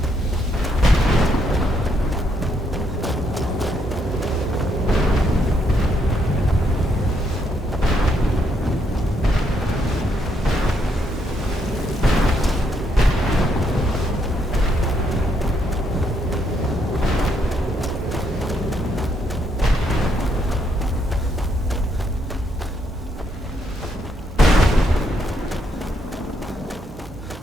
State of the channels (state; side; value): normal; both; correlation 0.75